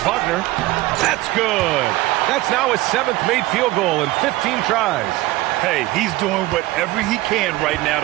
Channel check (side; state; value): left; quieter; 18.5 dB